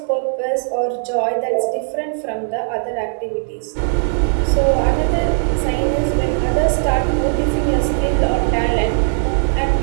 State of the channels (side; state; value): left; silent; digital silence